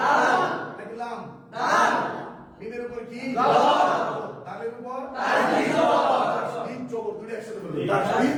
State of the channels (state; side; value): identical; both; correlation 1.00